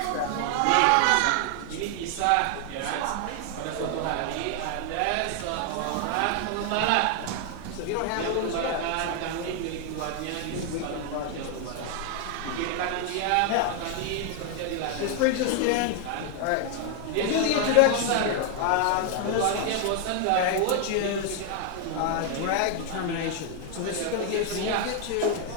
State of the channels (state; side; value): different; both; correlation 0.00